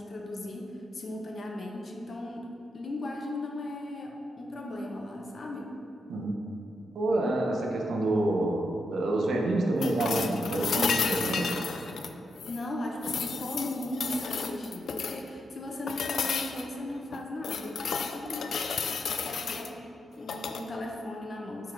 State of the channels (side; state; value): both; normal; correlation 0.83